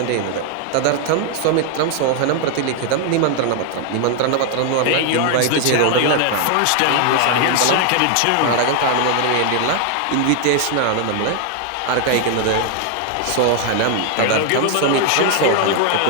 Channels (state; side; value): different; both; correlation 0.00